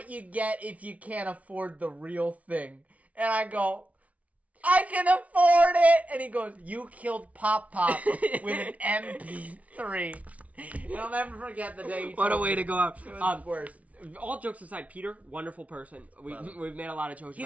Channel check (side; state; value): left; late; 0.067 ms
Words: you get if you can't afford the real thing. And I go, I can afford it. And he goes, you killed Pop Pop with an MP3. And I'll never forget the day. What a way to go out. It was the worst. All jokes aside, Peter, wonderful person. We've made a lot of jokes